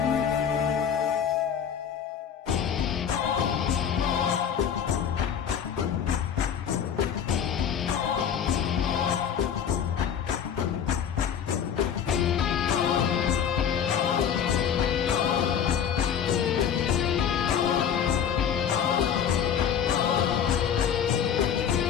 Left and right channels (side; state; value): right; quieter; 8.2 dB